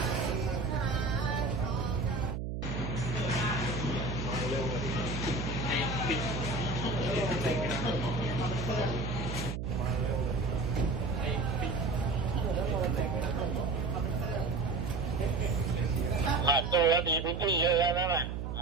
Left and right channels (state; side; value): noise; right; hum, 4 dB below the sound